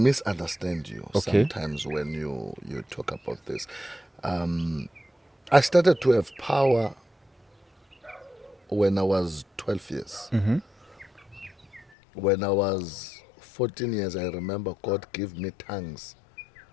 you Okay. sometimes when you talk about this. I started to have power when I was 12 years. Mm-hmm. When I was 14 years, I remember God gave me tongues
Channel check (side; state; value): right; drops out; at 11.9 s